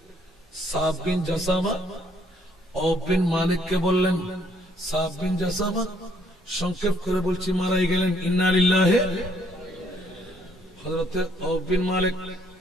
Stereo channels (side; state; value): both; normal; correlation 0.65